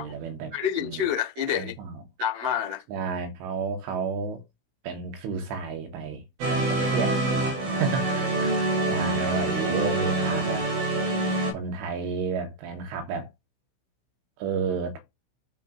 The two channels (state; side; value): late; left; 16 ms